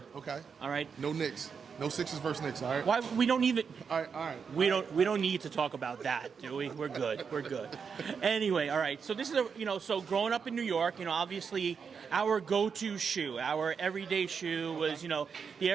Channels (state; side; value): quieter; left; 6.1 dB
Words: Okay. All right. No Knicks. No Sixers versus Knicks, all right? Why we don't even? All right. We don't need to talk about that, do we? We're good. Anyway, all right. So this is so growing up in New York, obviously our go-to shoe, our everyday shoe was the